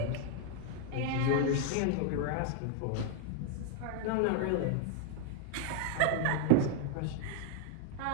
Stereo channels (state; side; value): different; both; correlation 0.00